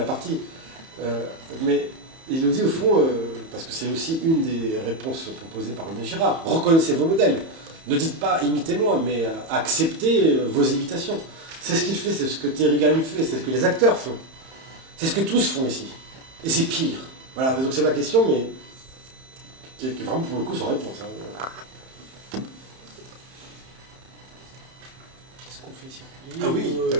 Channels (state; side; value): late; left; 31 ms